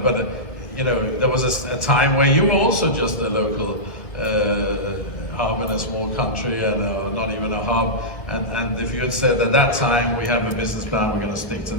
you know, there was a time where you were also just a local hub in a small country, and not even a hub. And if you had said at that time, we have a business plan, we're going to stick to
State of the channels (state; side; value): late; right; 1.9 ms